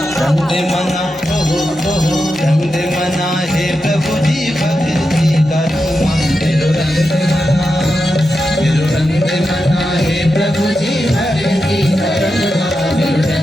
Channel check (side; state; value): both; normal; correlation 0.88